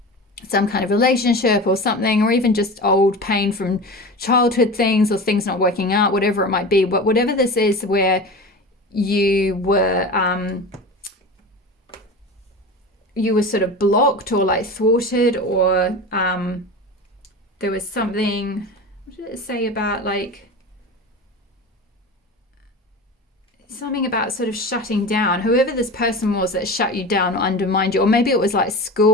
some kind of relationship or something, or even just old pain from childhood things, or things not working out, whatever it might be. But whatever this is, where you were sort of blocked or like thwarted, or there was something, what did it say about, like, something about sort of shutting down, whoever this person was that shut you down or undermined you, or maybe it was like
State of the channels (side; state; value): both; normal; correlation 0.31